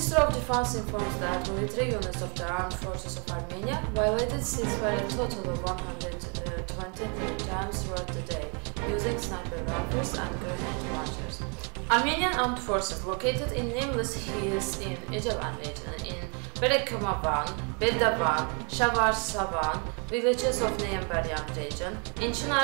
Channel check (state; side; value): quieter; left; 35.4 dB